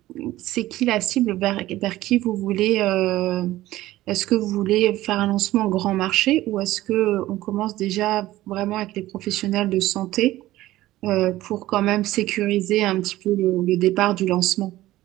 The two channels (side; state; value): left; quieter; 16.0 dB